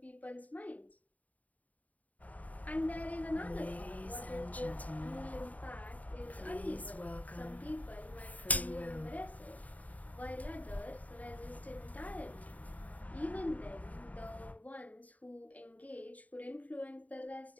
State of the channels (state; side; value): late; right; 0.072 ms